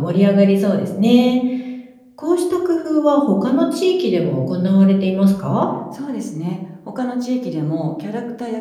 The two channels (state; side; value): identical; both; correlation 1.00